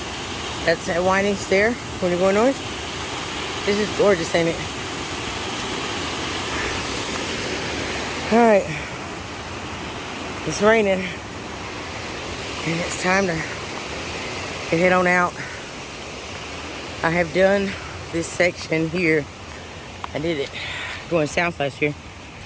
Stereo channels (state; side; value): identical; both; correlation 1.00